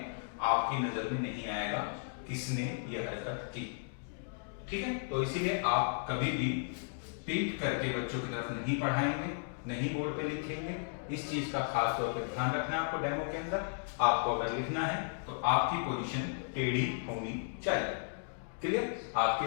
आपकी नजर में नहीं आएगा किसने यह हरकत की, ठीक है। तो इसीलिए आप कभी भी पीठ करके बच्चों की तरफ नहीं पढ़ाएंगे, नहीं बोर्ड पे लिखेंगे। इस चीज का खास तौर पे ध्यान रखना आपको डेमो के अंदर। आपको अगर लिखना है तो आपकी पोजीशन टेढ़ी होनी चाहिए, क्लियर, आपकी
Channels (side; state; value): right; silent; digital silence